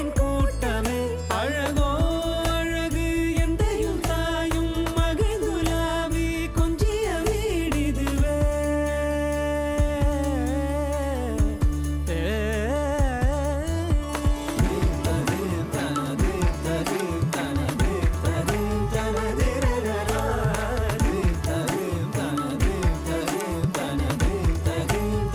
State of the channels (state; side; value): identical; both; correlation 1.00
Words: கூட்டமே அழகோ அழகு எந்தையும் தாயும் மகிழ்ந்துலாவி கொஞ்சிய வீடிதுவே